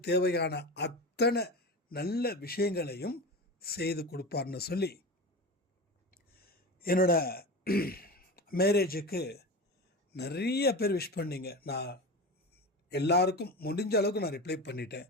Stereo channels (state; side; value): normal; both; correlation 0.27